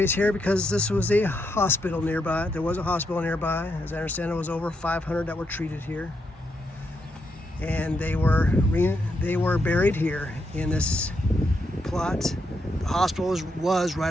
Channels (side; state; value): both; normal; correlation 0.81